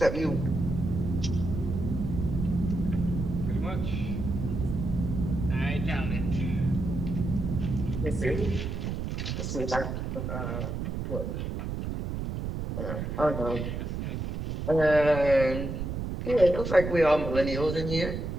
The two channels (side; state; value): right; noise; rumble, 4 dB below the sound